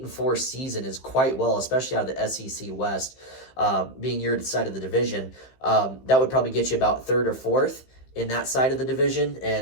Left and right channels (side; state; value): right; late; 15 ms